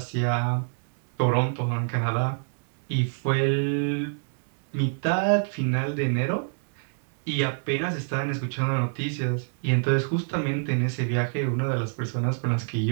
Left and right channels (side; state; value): left; silent; 60 dB below the other